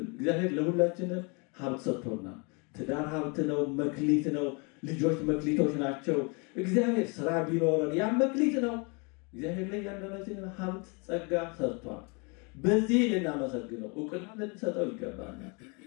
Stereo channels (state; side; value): quieter; right; 32.2 dB